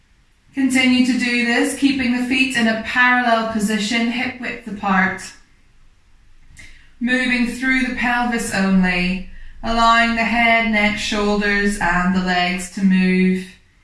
Continue to do this, keeping the feet in a parallel position, hip width apart. Moving through the pelvis only, allowing the head, neck, shoulders and the legs to move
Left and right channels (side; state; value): both; identical; correlation 1.00